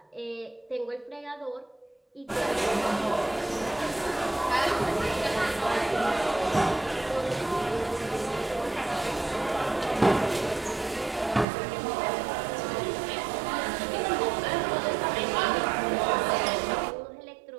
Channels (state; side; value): drops out; left; at 11.5 s